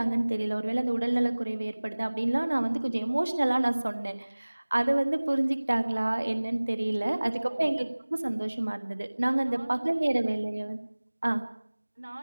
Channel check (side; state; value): both; inverted; correlation -1.00